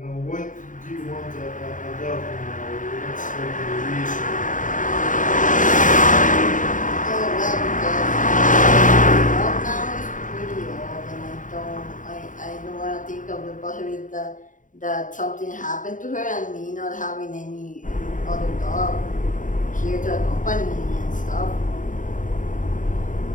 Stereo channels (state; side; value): late; right; 0.38 ms